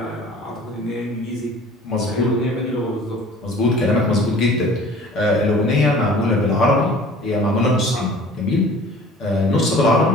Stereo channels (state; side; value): normal; both; correlation 0.47